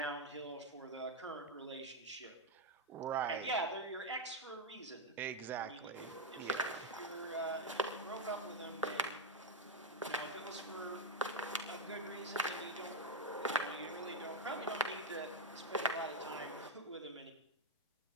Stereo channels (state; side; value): normal; both; correlation 0.04